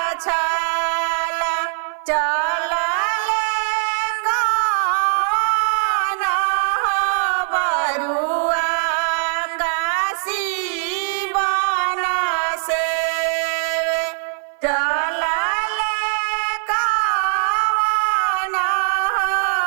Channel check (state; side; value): silent; left; 57 dB below the other